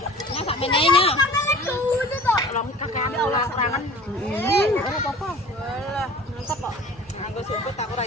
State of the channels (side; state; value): both; normal; correlation 0.44